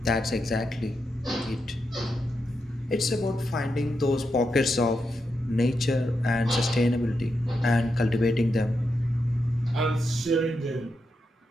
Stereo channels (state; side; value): normal; both; correlation 0.85